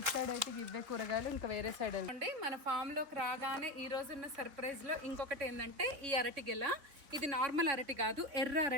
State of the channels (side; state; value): left; late; 3.6 ms